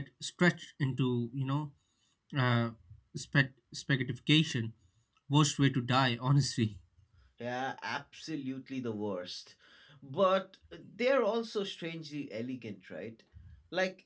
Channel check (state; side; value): identical; both; correlation 1.00